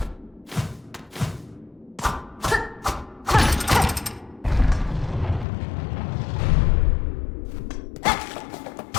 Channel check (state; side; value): drops out; right; at 5.5 s